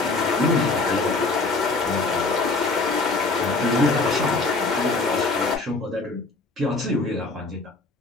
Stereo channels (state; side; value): quieter; right; 3.5 dB